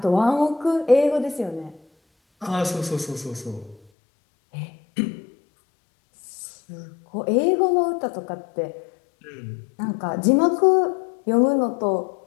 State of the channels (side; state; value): right; drops out; at 3.8 s